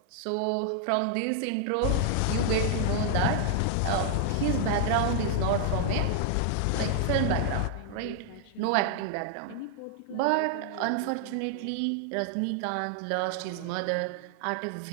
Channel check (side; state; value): both; different; correlation 0.00